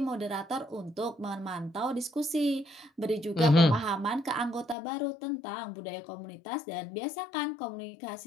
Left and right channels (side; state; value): right; drops out; at 4.8 s